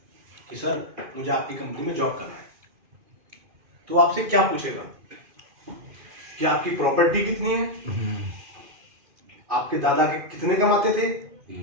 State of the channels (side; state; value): left; late; 2.5 ms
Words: कि सर मुझे आपकी कंपनी में जॉब करना है, तो आपसे क्या पूछेगा कि आपकी प्रॉपर्टी कितनी है, आपके दादा के कितने कमाते थे,